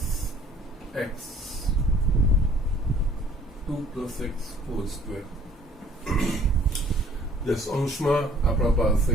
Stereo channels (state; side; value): normal; both; correlation 0.56